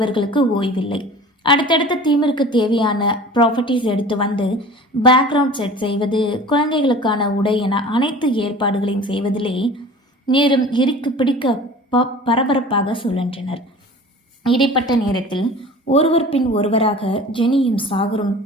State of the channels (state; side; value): normal; both; correlation 0.41